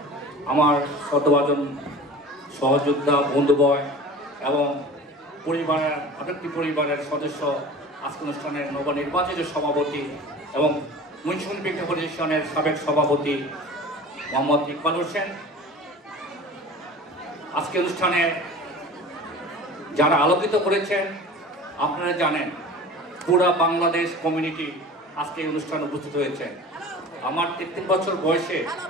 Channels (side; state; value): both; normal; correlation 0.39